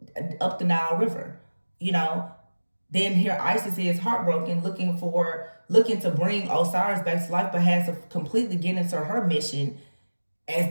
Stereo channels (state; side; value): inverted; both; correlation -1.00